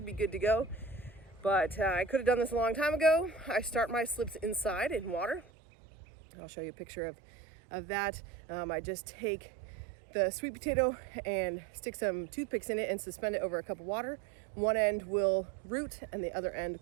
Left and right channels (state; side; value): drops out; left; at 5.5 s